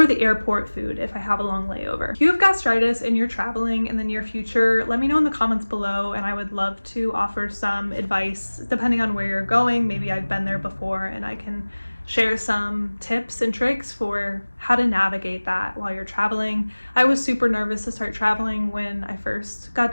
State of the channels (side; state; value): both; inverted; correlation -1.00